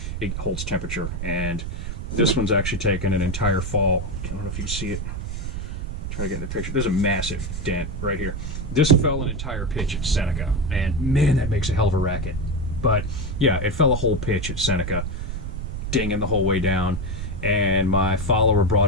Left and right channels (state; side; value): noise; right; rumble, 5 dB below the sound